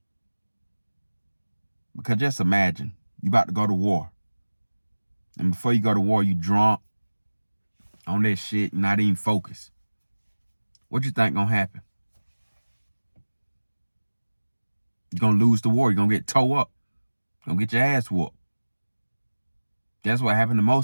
Because just imagine, you about to go to war. And before you go to war, you drunk on that shit, not even focused. What you think gonna happen? You're gonna lose the war. You're gonna get towed up. You're gonna get your ass whooped. That's what happened to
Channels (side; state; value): both; inverted; correlation -1.00